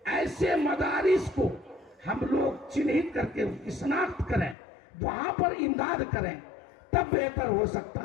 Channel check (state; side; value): drops out; right; at 4.5 s